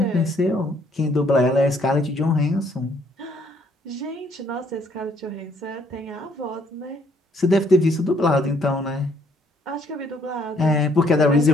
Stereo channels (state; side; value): normal; both; correlation 0.65